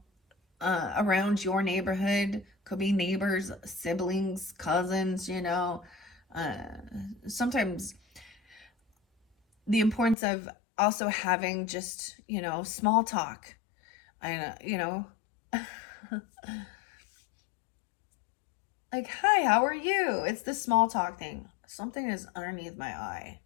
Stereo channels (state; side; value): drops out; right; at 10.2 s